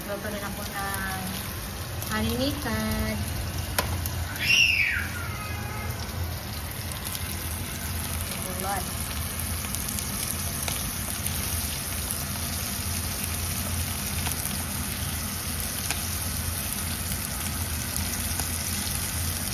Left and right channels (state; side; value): identical; both; correlation 1.00